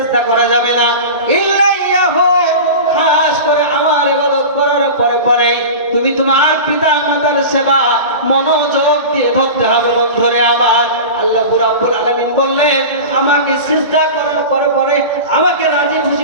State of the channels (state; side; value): inverted; both; correlation -0.31